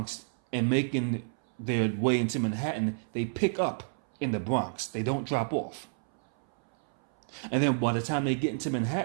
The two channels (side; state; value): left; silent; 58 dB below the other